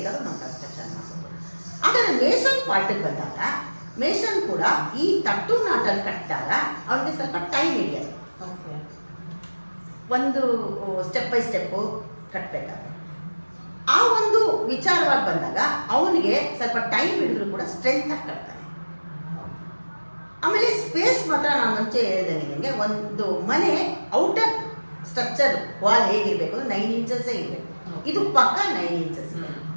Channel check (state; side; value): inverted; both; correlation -1.00